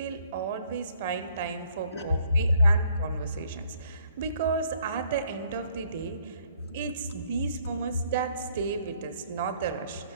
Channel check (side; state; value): both; inverted; correlation -0.64